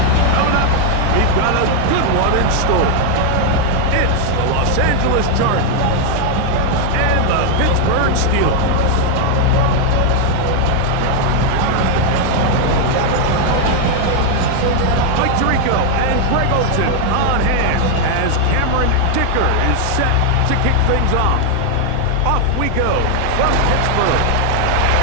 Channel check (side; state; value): both; different; correlation 0.00